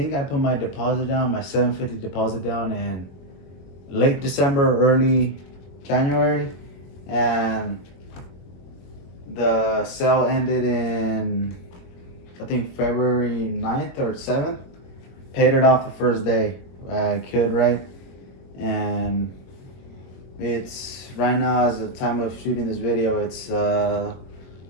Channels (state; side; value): late; right; 21 ms